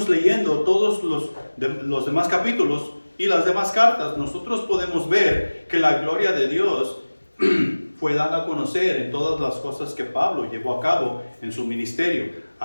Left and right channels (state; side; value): inverted; both; correlation -1.00